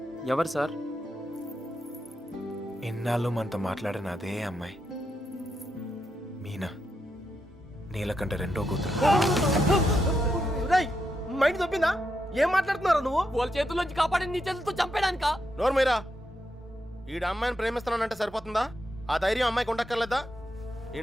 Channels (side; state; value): both; normal; correlation 0.83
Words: ఎవరు సార్? ఎన్నాళ్ళు మనతో మాట్లాడిన అదే అమ్మాయి, మీనా. నీలకంఠ రెండో కూతురు. మైండ్ తప్పిందా? ఏం మాట్లాడుతున్నారా నువ్వు? వాళ్ళ చేతుల్లోంచి కాపాడి నీ చేతులతో చంపేడానికా? నోరు మీరా. ఈడ అమ్మాయిని ప్రేమిస్తున్నానంటే సరిపోతుందా? ఆ ధైర్యం అమ్మాయికి ఉండక్కర్లేదా?